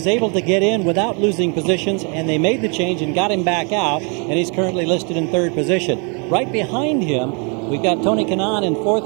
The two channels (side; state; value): left; quieter; 36.0 dB